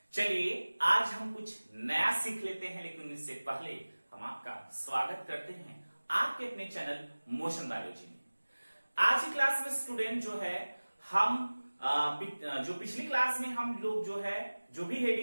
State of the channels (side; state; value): both; inverted; correlation -1.00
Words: चलिए आज हम कुछ नया सीख लेते हैं, लेकिन इससे पहले हम आपका स्वागत करते हैं आपके अपने चैनल मोशन बायोलॉजी में। आज की क्लास में स्टूडेंट जो है हम जो पिछली क्लास में हम लोग जो भी